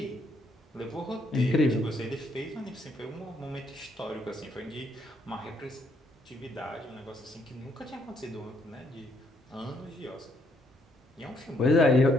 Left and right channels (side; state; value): both; normal; correlation 0.71